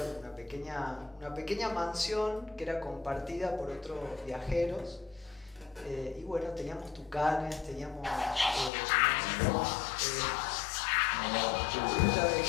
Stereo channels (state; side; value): drops out; right; at 8.7 s